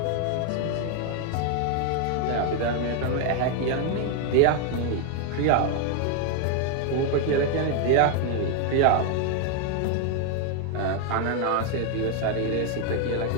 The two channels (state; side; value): different; both; correlation 0.01